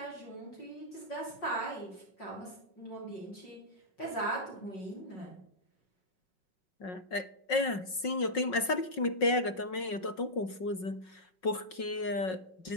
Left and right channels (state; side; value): late; right; 5.4 ms